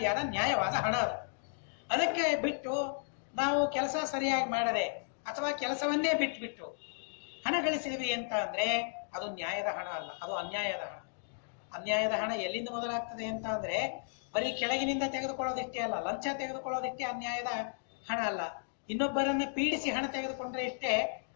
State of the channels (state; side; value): silent; right; digital silence